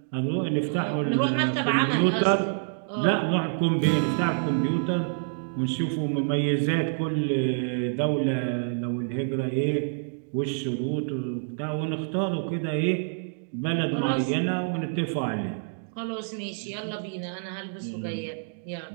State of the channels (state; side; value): silent; left; digital silence